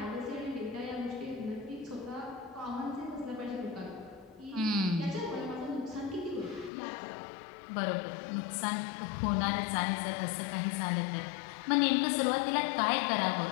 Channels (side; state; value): right; drops out; at 6.7 s